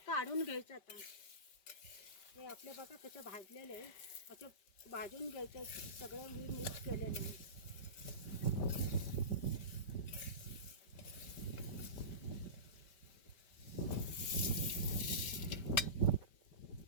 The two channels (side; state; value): right; late; 5.2 ms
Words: काढून घ्यायचं. आता हे आपले बघा कसं भाजलेलं आहे. असं भाजून घ्यायचं. सगळं मी मिक्स केलेलं आहे.